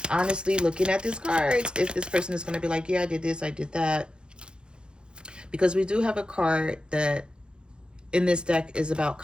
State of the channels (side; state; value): left; late; 0.051 ms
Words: Honestly, looking at these cards, if this person is going to be like, yeah, I did this, I did that. Because we do have a card that in this deck is about